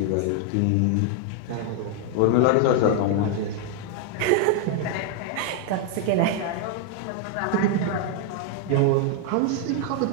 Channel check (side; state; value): both; different; correlation 0.00